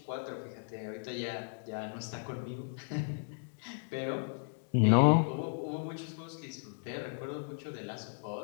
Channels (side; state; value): right; silent; digital silence